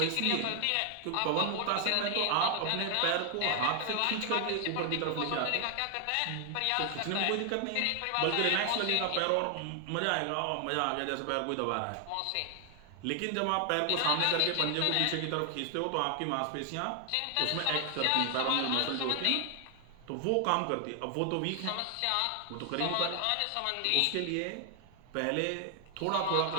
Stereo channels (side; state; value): both; different; correlation 0.00